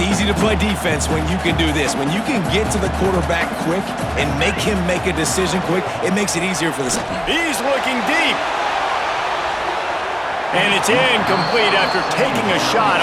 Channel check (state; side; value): identical; both; correlation 1.00